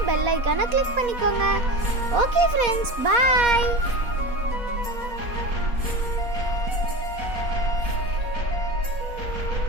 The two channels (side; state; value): left; late; 4.1 ms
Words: பெல் ஐக்கானை கிளிக் பண்ணிக்கோங்க. ஓகே ஃப்ரெண்ட்ஸ், பாய்.